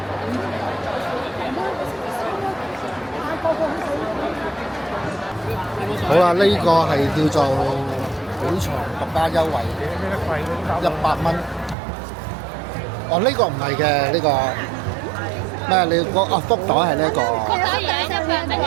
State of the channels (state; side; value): drops out; left; at 11.8 s